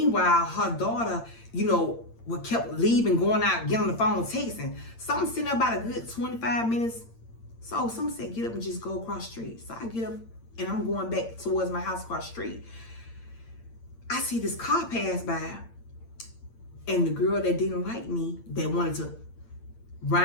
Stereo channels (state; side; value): late; right; 8.8 ms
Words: her daughter, you know, kept leaving, going out, getting on the phone, texting. So I'm sitting there about a good 25 minutes. So someone said, get up and just go across the street. So I get up, and I'm going back towards my house across the street. I see this car pass by, and the girl that didn't like me, that wanted to